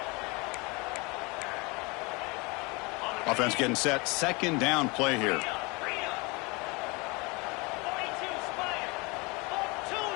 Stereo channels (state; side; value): quieter; right; 27.2 dB